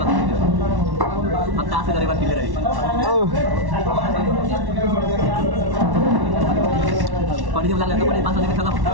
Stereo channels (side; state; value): left; late; 1.1 ms